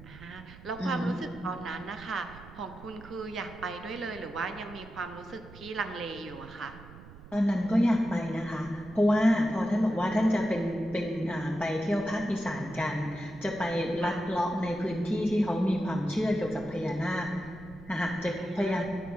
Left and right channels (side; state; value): right; noise; rumble, 17 dB below the sound